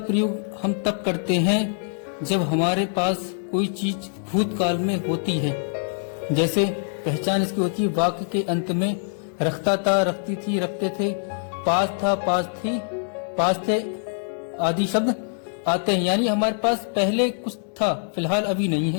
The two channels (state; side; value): silent; right; digital silence